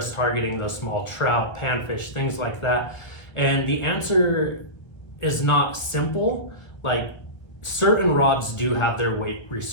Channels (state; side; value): late; right; 1.3 ms